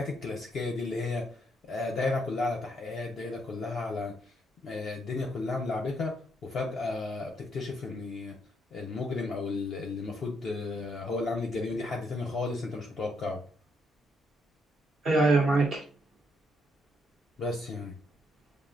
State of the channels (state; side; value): normal; both; correlation 0.74